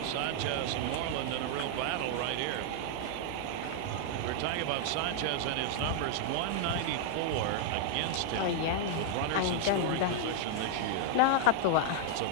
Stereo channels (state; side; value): different; both; correlation -0.01